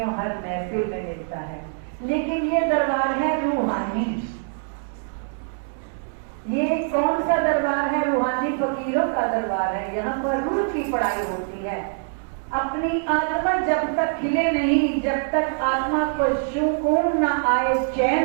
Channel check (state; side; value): silent; left; 63 dB below the other